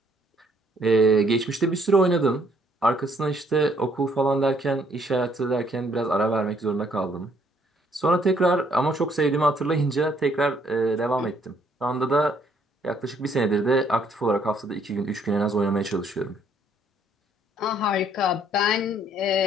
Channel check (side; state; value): both; normal; correlation 0.66